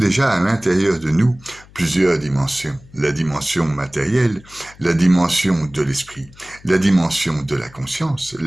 à l'intérieur de nous plusieurs dimensions. La dimension matérielle, la dimension de l'esprit, la dimension de la conscience,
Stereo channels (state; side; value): noise; left; hum, 24 dB below the sound